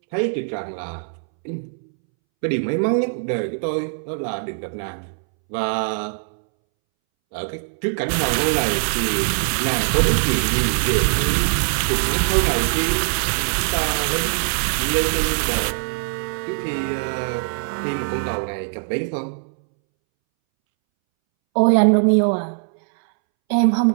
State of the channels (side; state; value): left; silent; 64 dB below the other